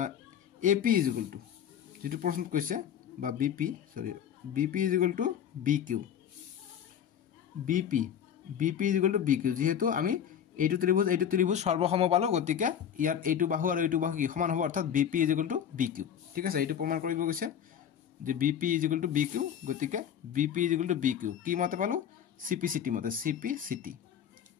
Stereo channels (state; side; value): quieter; right; 8.9 dB